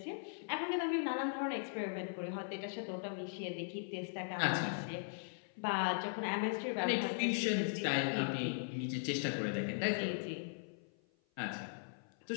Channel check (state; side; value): silent; right; 52 dB below the other